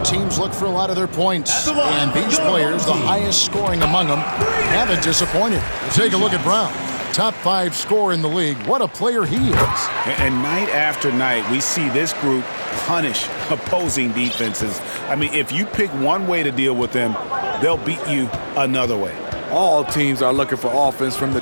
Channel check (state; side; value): inverted; both; correlation -1.00